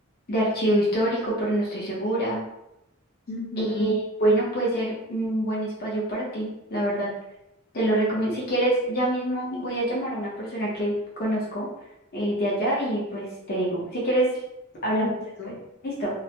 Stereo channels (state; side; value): normal; both; correlation 0.37